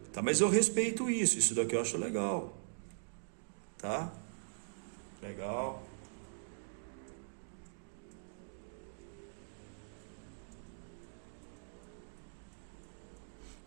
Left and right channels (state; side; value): silent; left; digital silence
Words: Tá, mas eu respeito isso. Isso daqui eu acho legal. Tá? Legal.